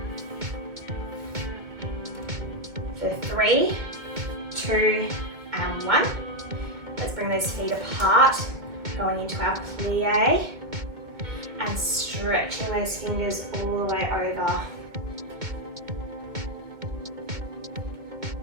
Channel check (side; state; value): left; late; 2.2 ms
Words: For 3, 2, and 1. Let's bring those feet apart, going into our plie, and stretching those fingers all the way over.